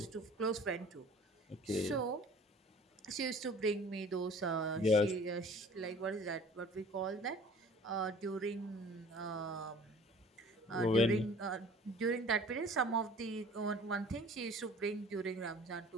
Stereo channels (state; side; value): normal; both; correlation 0.48